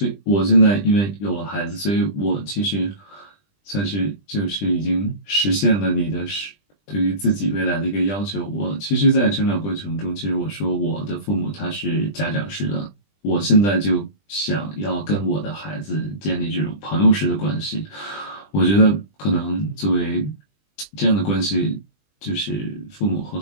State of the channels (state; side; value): late; right; 20 ms